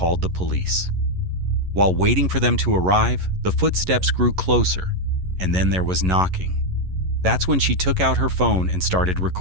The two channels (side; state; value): left; late; 11 ms